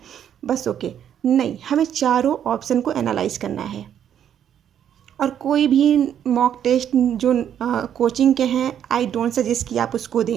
बस ओके। नहीं, हमें चारों ऑप्शन को एनालाइज करना है। और कोई भी मॉक टेस्ट जो कोचिंग के हैं, आई डोंट सजेस्ट कि आप उसको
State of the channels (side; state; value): left; quieter; 9.5 dB